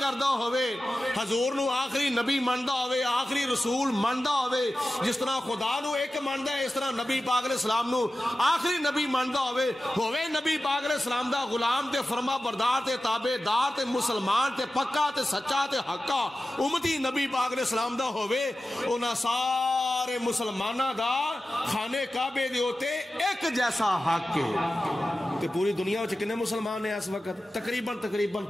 ہووے, حضور نو آخری نبی مندا ہووے, آخری رسول مندا ہووے, جس طرح خدا نو ایک مندا ہے اس طرح نبی پاک علیہ السلام نو آخری نبی مندا ہووے نبی پاک علیہ السلام دا غلام تے فرما بردار تے تابع دار تے مسلمان تے پکا تے سچا تے حقا امتی نبی پاک علیہ السلام دا ہووے, انہاں سارے مسلمانہ دا خانے کعبے دے ہوتے ایک جیسا حق ہے. تے پوری دنیا وچ کنے مسلمان ہیں اس وقت؟ تقریباً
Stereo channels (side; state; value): both; normal; correlation 0.94